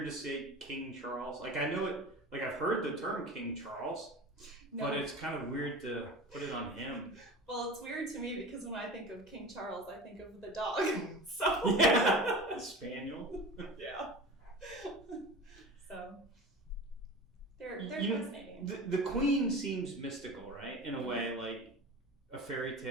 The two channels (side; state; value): both; normal; correlation 0.34